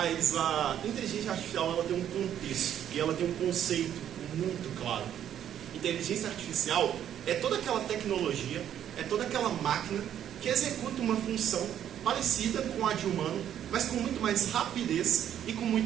a inteligência artificial ela tem um contexto e ela tem um conceito muito claro. Inteligência artificial é toda aquela tecnologia, é toda aquela máquina que executa uma função parecida com a de humano, mas com muito mais rapidez e com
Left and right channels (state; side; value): quieter; left; 10.2 dB